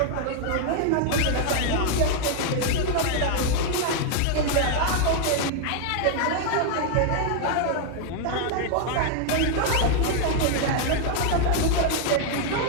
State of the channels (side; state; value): both; different; correlation 0.00